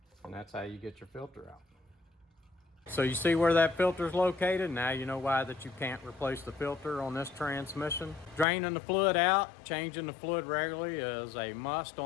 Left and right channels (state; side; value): drops out; right; at 8.5 s